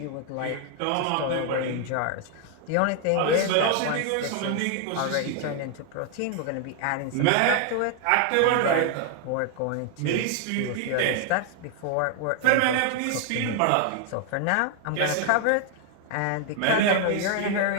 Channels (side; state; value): both; different; correlation 0.00